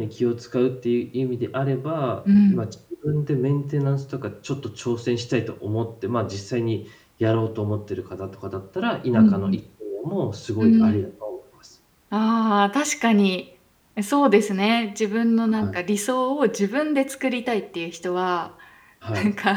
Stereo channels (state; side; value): identical; both; correlation 1.00